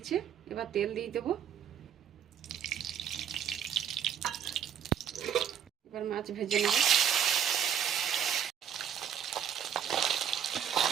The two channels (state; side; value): quieter; left; 8.9 dB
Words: এবার তেল দিয়ে দেবো। এবার মাছ ভেজে নেব।